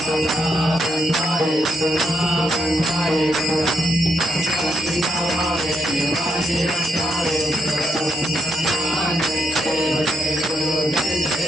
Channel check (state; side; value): normal; both; correlation 0.78